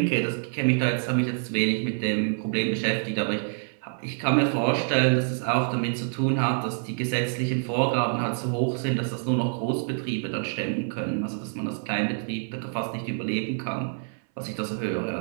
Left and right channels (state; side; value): silent; left; 60 dB below the other